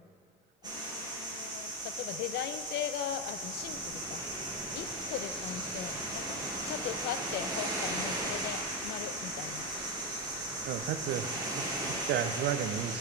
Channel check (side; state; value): both; normal; correlation 0.07